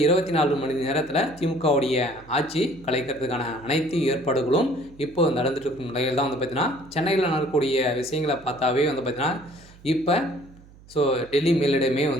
24 மணி நேரத்தில் திமுகவுடைய ஆட்சி கலைக்கிறதுக்கான அனைத்து ஏற்பாடுகளும் இப்போ நடந்துட்டு இருக்கும் நிலையில் தான் பார்த்தீங்கன்னா சென்னையில் நடக்கக்கூடிய விஷயங்களை பார்த்தாவே பார்த்தீங்கன்னா இப்போ டெல்லி மேலிடமே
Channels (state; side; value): noise; right; hum, 23 dB below the sound